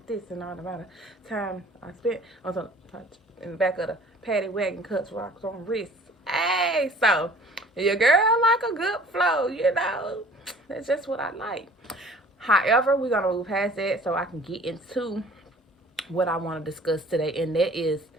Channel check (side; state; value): both; normal; correlation 0.50